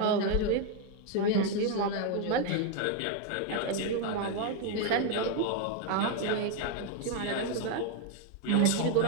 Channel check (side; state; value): both; different; correlation 0.01